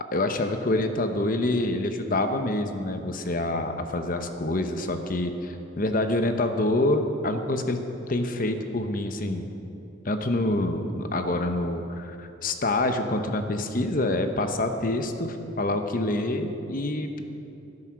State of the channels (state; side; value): normal; both; correlation 0.38